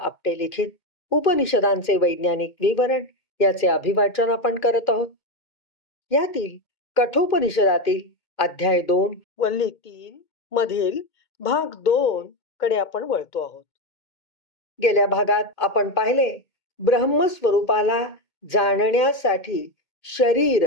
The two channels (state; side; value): late; right; 2.2 ms